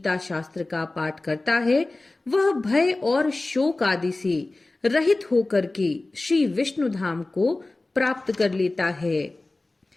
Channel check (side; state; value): right; quieter; 3.0 dB